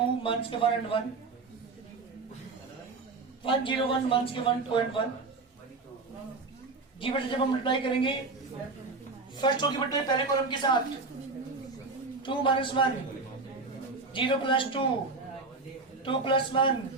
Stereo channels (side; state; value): left; quieter; 3.9 dB